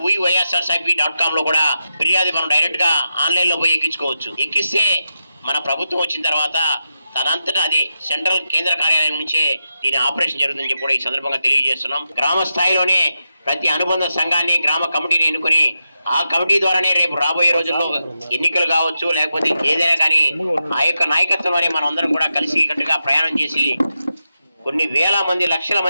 wyrsrcip.com లో కూడా ఫిర్యాదు మనం డైరెక్ట్గా ఆన్లైన్లో పోయి ఎక్కించుకోవచ్చు. ఎక్కిస్తే మన ప్రభుత్వం వచ్చిన తర్వాత తనంతటా అదే సెంట్రల్ కేంద్ర కార్యాలయం నుంచే దీని ఆపరేషన్ జరుగుతుందని చెప్పి కూడా ఈ సందర్భంగా తెలియజేస్తున్నాం. గ్రామ స్థాయిలోనే ప్రతి అనుబంధ సంఘాన్ని, గ్రామ కమిటీని ఎన్నుకొని ఆ కమిటీ ద్వారానే రేపు రాబోయే రోజుల్లో ఎన్నికలు కావచ్చు, లేకపోతే ఏదైనా కానీ ఆ యొక్క నాయకత్వంలోనే మనం అందరం కూడా కలిసి కట్టుగా ప్రయాణం చేసి కొన్ని వేల మంది, లక్షల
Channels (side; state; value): both; inverted; correlation -0.88